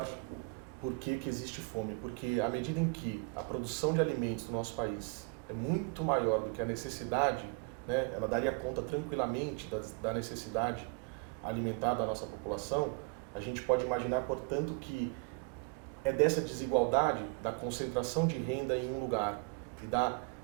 por que existe fome. Porque à medida em que a produção de alimentos no nosso país é muito maior do que a necessidade, né, ela daria conta tranquilamente da necessidade alimentar da nossa população, a gente pode imaginar, portanto, que é dessa desigualdade, da concentração de renda em um lugar e da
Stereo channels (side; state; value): left; quieter; 33.7 dB